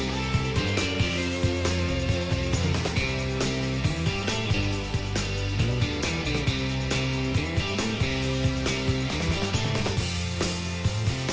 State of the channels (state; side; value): identical; both; correlation 1.00